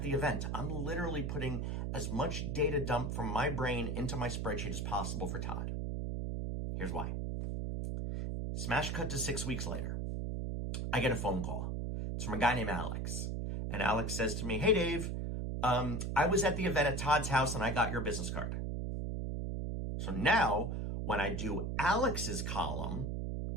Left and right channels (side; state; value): right; noise; hum, 2 dB below the sound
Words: the event. I'm literally putting as much data dump from my brain into my spreadsheet as possible for Todd. Here's why. Smash cut to 6 weeks later. I get a phone call. It's from a guy named Alex. And Alex says to me, "Hey, Dave, I was at the event at Todd's house and I got your business card." So now when I do Alex's column